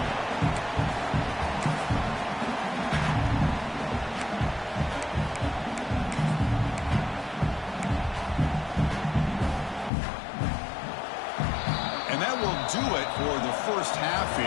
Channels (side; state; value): right; drops out; at 9.9 s